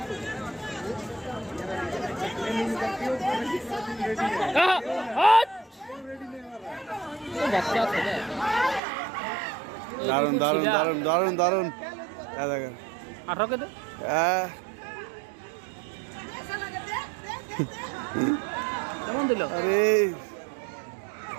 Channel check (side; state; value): left; drops out; at 8.8 s